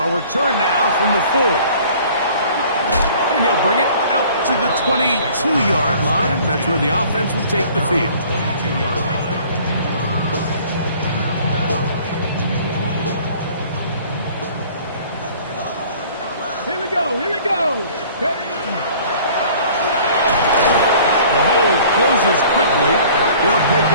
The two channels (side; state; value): both; inverted; correlation -0.51